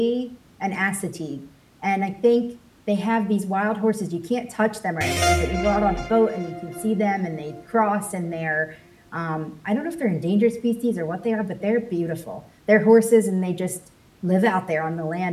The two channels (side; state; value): both; identical; correlation 1.00